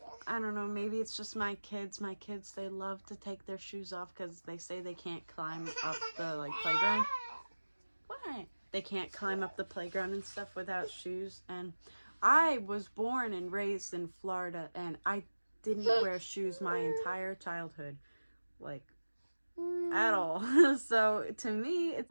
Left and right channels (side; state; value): both; inverted; correlation -1.00